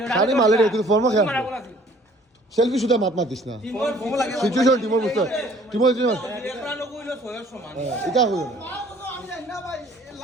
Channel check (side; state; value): both; normal; correlation 0.55